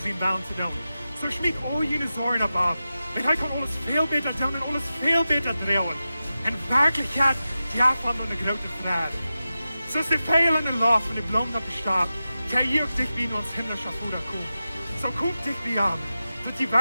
baan te doen. So schmied al jene zorgen op af. En hij kan alles veel beter doen en alles veel beter draaien. En werkelijkheid, ja van een grote vraag. Zoals de veel en de lof van de bloem dat bestaat, kan je ook dicht bij ons himmlische Vader komen. Zo komt dicht bij aan, dat die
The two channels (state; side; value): inverted; both; correlation -0.93